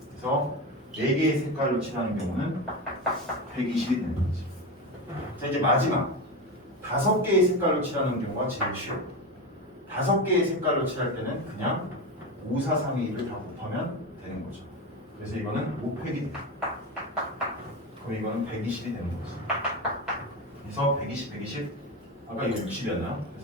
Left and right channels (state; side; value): normal; both; correlation 0.20